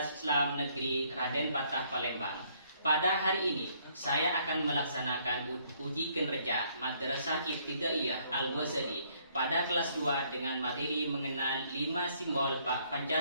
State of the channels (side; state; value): both; inverted; correlation -0.66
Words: Islam Negeri Raden Patah, Palembang. Pada hari ini, saya akan melaksanakan uji kinerja Madrasah Ibtidaiyah Al-Wazadi pada kelas 2 dengan materi mengenal 5 simbol